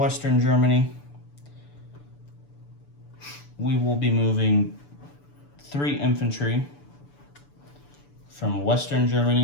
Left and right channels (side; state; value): right; late; 6.9 ms